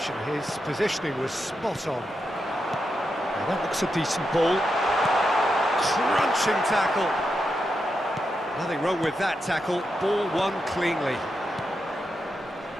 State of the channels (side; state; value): both; normal; correlation 0.86